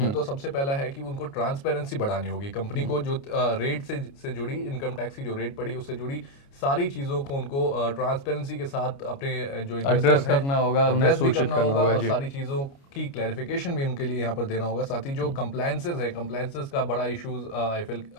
तो सबसे पहला है कि उनको ट्रांसपेरेंसी बढ़ानी होगी। कंपनी को जो रेट से जुड़ी, इनकम टैक्स की जो रेट पड़ी उससे जुड़ी सारी चीजों को उनको ट्रांसपेरेंसी के साथ अपने जो एड्रेस करना होगा, उन्हें सूचित करना होगा और सारी चीजों की क्लैरिफिकेशन भी उनके लिए यहाँ पर देना होगा। साथ ही जो कंप्लायंसेस है, कंप्लायंसेस का बड़ा इश्यूज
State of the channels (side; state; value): right; late; 29 ms